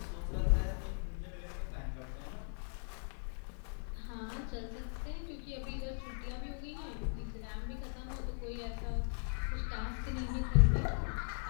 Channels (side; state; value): right; silent; 52 dB below the other